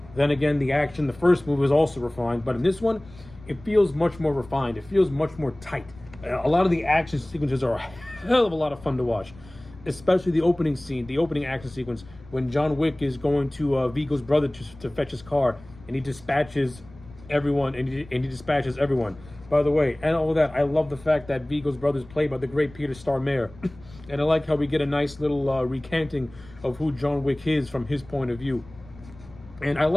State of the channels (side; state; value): left; noise; rumble, 21 dB below the sound